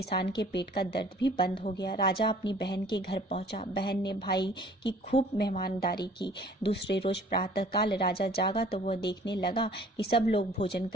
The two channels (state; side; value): normal; both; correlation 0.52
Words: के पेट का दर्द भी बंद हो गया। राजा अपनी बहन के घर पहुंचा। बहन ने भाई की खूब मेहमानदारी की। दूसरे रोज प्रातःकाल राजा जागा तो वह देखने लगा कि सब लोग भोजन